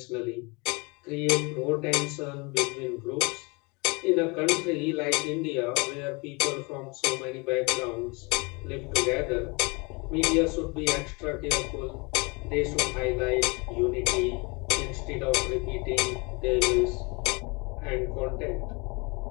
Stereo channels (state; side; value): quieter; right; 28.8 dB